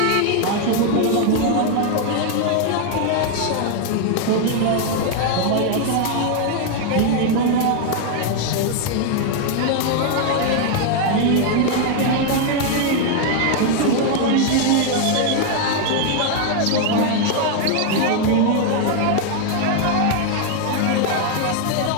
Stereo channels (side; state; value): both; different; correlation 0.00